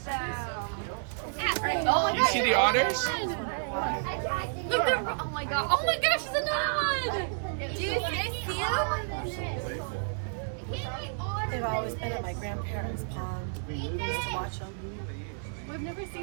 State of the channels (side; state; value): left; silent; digital silence